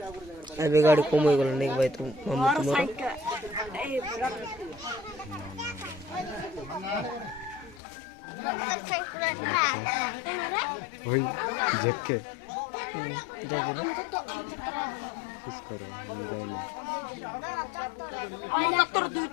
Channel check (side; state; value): right; drops out; at 7.8 s